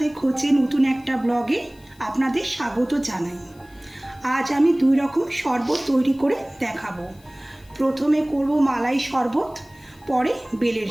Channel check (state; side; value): noise; left; hiss, 29 dB below the sound